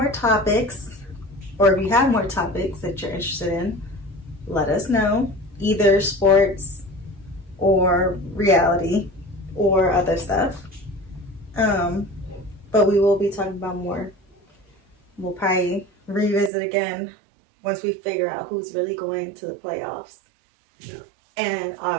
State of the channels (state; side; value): drops out; left; at 16.5 s